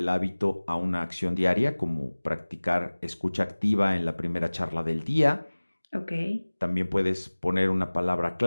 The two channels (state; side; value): inverted; both; correlation -1.00